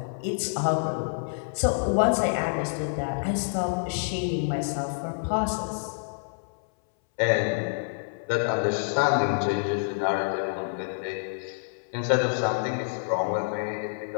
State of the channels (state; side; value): silent; right; 60 dB below the other